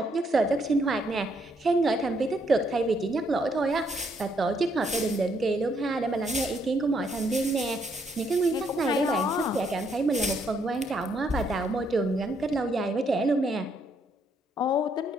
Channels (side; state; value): both; normal; correlation 0.72